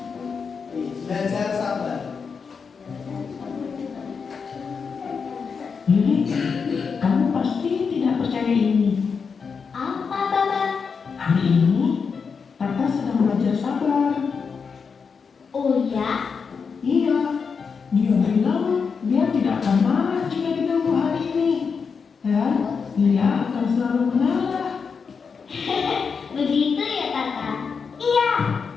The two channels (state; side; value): quieter; right; 5.7 dB